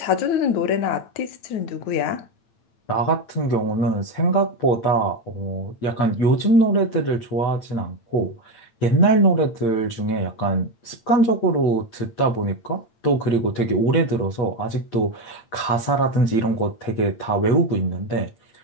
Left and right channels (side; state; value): right; late; 8.8 ms